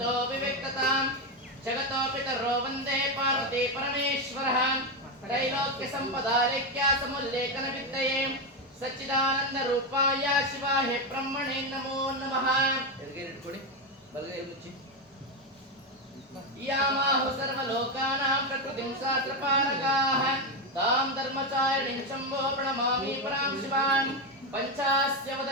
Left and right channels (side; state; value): both; normal; correlation 0.09